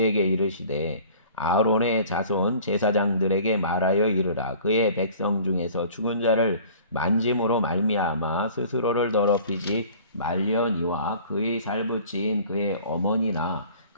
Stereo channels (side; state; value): both; inverted; correlation -0.48